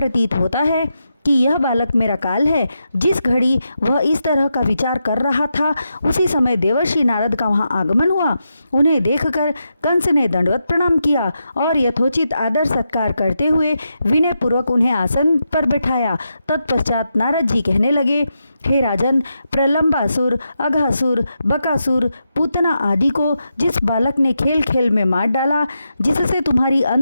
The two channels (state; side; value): inverted; both; correlation -0.85